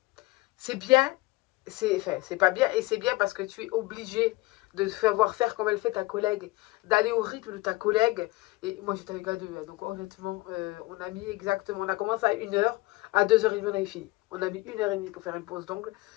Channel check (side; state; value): right; quieter; 20.5 dB